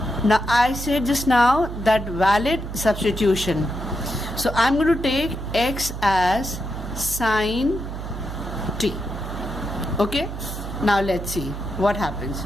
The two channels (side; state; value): right; noise; hum, 7 dB below the sound